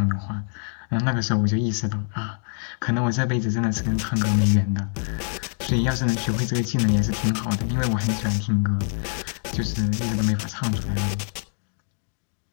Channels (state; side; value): silent; right; digital silence